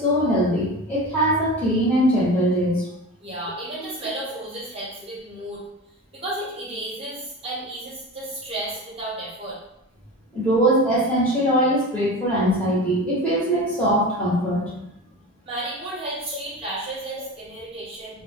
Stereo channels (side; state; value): both; normal; correlation 0.30